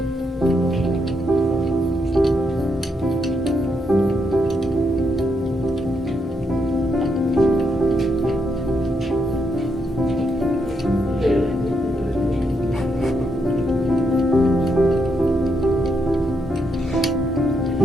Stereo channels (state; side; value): normal; both; correlation 0.79